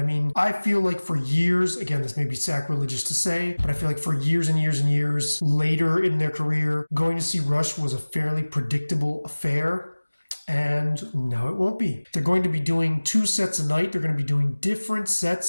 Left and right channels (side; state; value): both; inverted; correlation -1.00